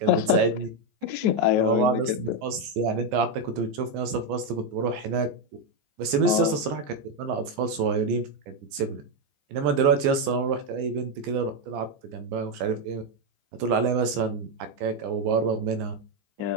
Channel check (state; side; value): late; left; 14 ms